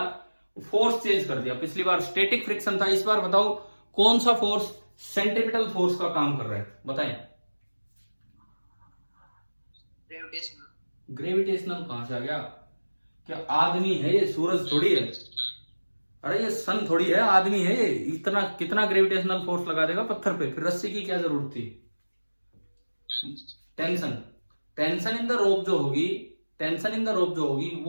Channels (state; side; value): inverted; both; correlation -1.00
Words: फोर्स चेंज कर दिया। पिछली बार स्टैटिक फ्रिक्शन था, इस बार बताओ कौन सा फोर्स सेंट्रीपिटल फोर्स का काम कर रहा है, बताएं। ग्रेविटेशनल कहां से आ गया? क्या आदमी है ये? सूरज थोड़ी है, अरे ये सन थोड़ी है, आदमी है ये। इतना कितना ग्रेविटेशनल फोर्स लगा देगा पत्थर पे? फिर रस्सी की क्या जरूरत थी? टेंशन इन द रोप जो होगी